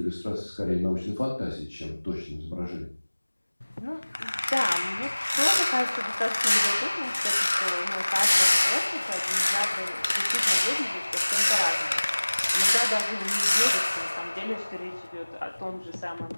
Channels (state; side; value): inverted; both; correlation -1.00